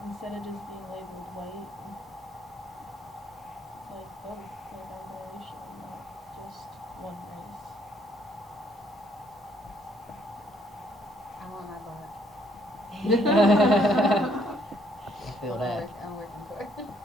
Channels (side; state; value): both; normal; correlation 0.68